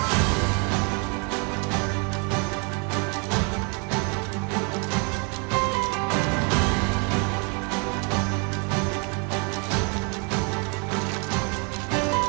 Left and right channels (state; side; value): quieter; left; 34.2 dB